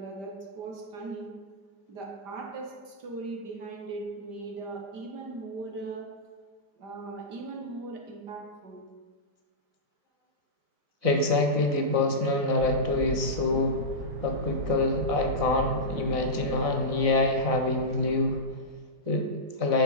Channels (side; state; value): left; late; 4.0 ms